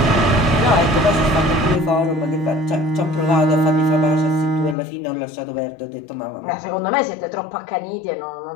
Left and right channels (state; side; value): drops out; right; at 4.8 s